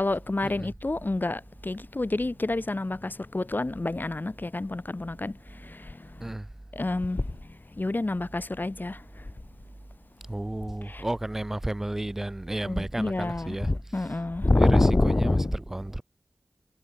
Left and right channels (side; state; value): both; normal; correlation 0.97